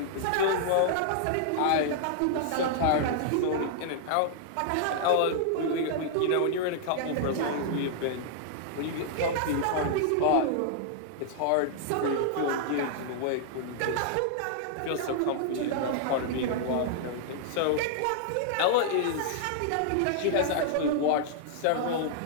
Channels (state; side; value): different; both; correlation -0.01